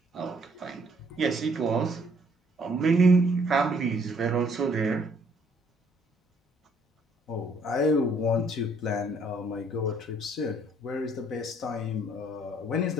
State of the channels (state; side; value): normal; both; correlation 0.63